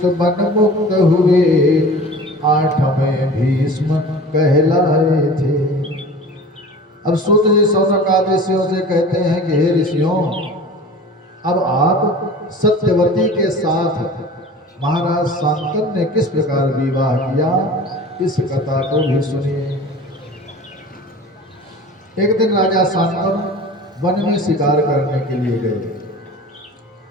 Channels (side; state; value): both; normal; correlation 0.40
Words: बन मुक्त हुए 8वें भीष्म कहलाए थे। अब सूत जी सौनकादि ऋषियों से कहते हैं कि हे ऋषियों, अब आप सत्यवती के साथ महाराज शांतनु ने किस प्रकार विवाह किया, इस कथा को भी सुनिए। एक दिन राजा शांतनु वन में शिकार करने के लिए गए